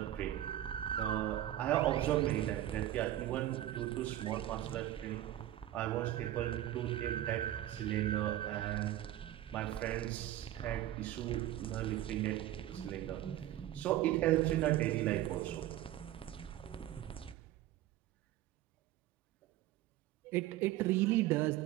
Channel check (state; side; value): quieter; left; 13.5 dB